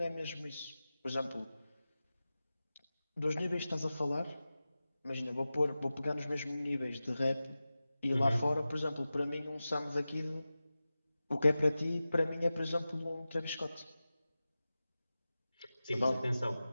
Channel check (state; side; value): inverted; both; correlation -0.95